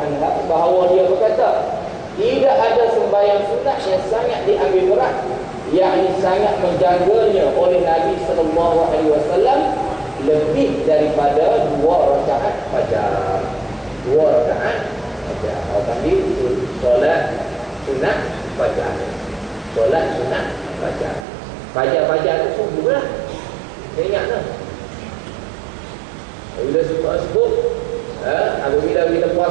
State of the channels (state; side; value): drops out; left; at 21.2 s